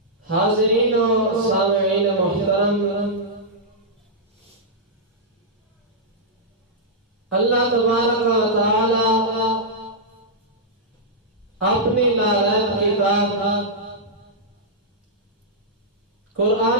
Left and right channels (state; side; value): normal; both; correlation -0.10